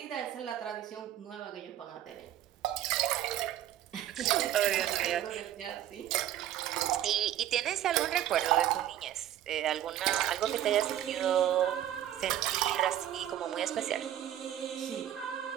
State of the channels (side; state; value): left; quieter; 11.9 dB